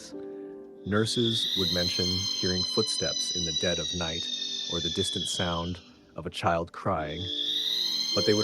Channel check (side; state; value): both; identical; correlation 1.00